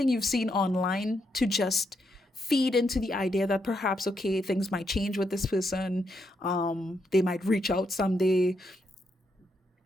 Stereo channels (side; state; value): both; normal; correlation 0.80